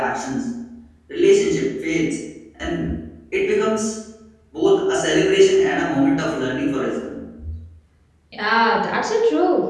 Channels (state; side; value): identical; both; correlation 1.00